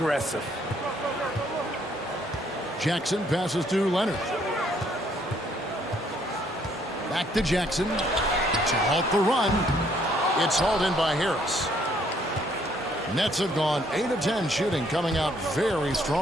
Jackson passes to Leonard. Back to Jackson to halt the run. It's hauled in by Harris. Nets have gone 8 of 10 shooting, coming out very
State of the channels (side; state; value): both; normal; correlation 0.66